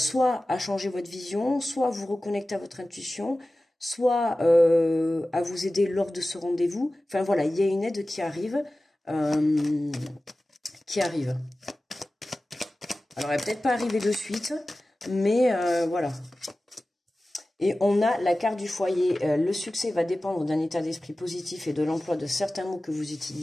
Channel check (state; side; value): normal; both; correlation 0.96